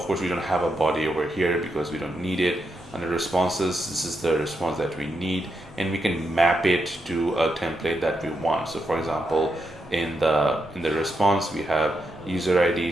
course, we don't have a body over here because we don't need it. Under responses, this is the response that we need, and we can map it to a template that we want. So for example, in the response, we have user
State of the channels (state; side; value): normal; both; correlation 0.83